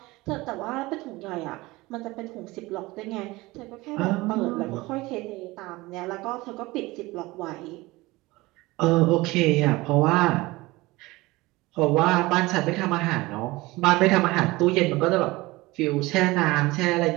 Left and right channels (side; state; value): left; quieter; 20.9 dB